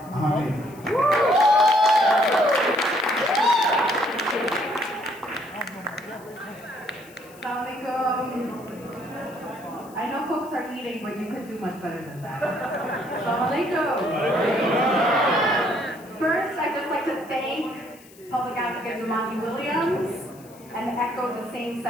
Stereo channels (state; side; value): noise; left; hiss, 24 dB below the sound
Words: Hamid. Assalamualaikum. I know folks are eating, but you could do much better than that. Assalamualaikum. First, I'd just like to thank Public Advocate Jumaane Williams and echo the same